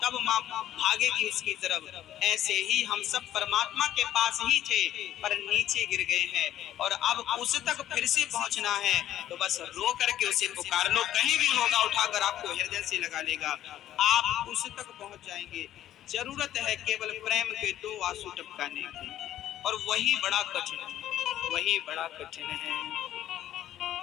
तब माँ भागेगी उसकी तरफ। ऐसे ही हम सब परमात्मा के पास ही थे पर नीचे गिर गए हैं और अब उस तक फिर से पहुंचना है, तो बस रो करके उसे पुकार लो, कहीं भी होगा उठाकर आपको हृदय से लगा लेगा, आप उस तक पहुंच जाएंगे। जरूरत है केवल प्रेम के 2 आंसू टपकाने की, और वही बड़ा कठिन है, वही बड़ा कठिन है।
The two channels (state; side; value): quieter; right; 12.2 dB